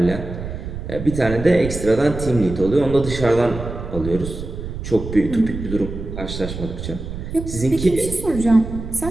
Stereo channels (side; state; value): right; noise; rumble, 8 dB below the sound